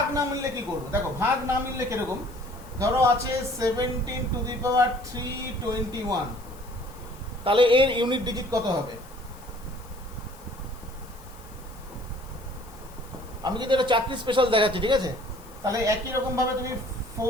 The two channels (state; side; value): noise; left; hiss, 23 dB below the sound